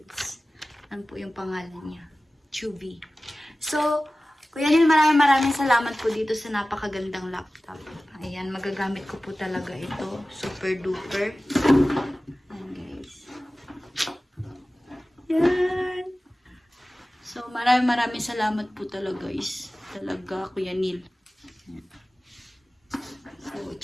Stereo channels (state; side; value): normal; both; correlation 0.97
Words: Ano po yung pangalan niya? Chewy. So, Kuya Neil, maraming salamat po dito sa napakagandang laptop. Ayan, magagamit ko po talaga ito. Super duper. Ayan guys. Yan. So, maraming salamat po talaga guys. Talaga, Kuya Neil. Ayan. So,